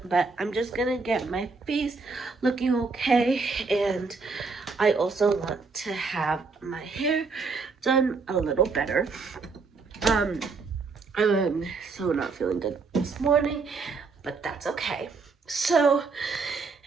but I'm just gonna get my face looking okay, and I also want to have my hair done a little better. I'm so not feeling good this morning, but that's okay. So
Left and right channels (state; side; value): quieter; left; 4.4 dB